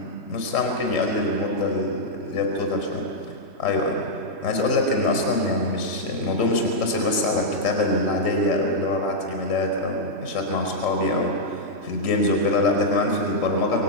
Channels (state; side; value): late; right; 3.1 ms